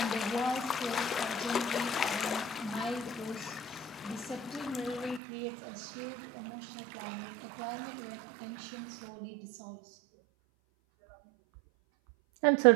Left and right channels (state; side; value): drops out; left; at 5.2 s